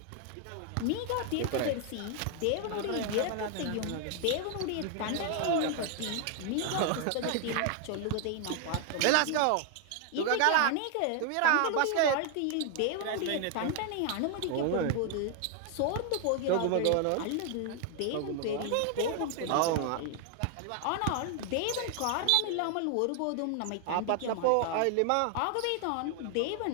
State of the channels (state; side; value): different; both; correlation 0.00